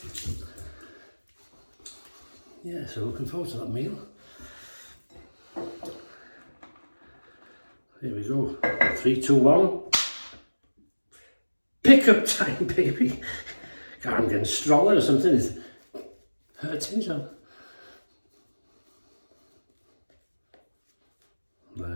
Yeah, so looking forward to that meal. Here we go. 3, 2, 1. Pickup time, baby. God, I'm getting stronger or something. It hurts me so.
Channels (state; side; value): inverted; both; correlation -1.00